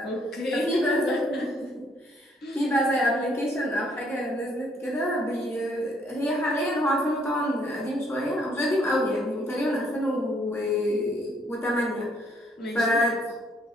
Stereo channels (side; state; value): both; normal; correlation 0.67